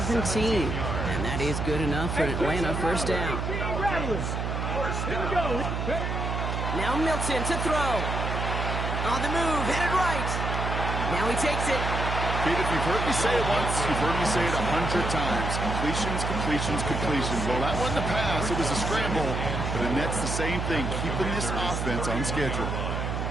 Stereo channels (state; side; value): noise; right; hum, 2 dB below the sound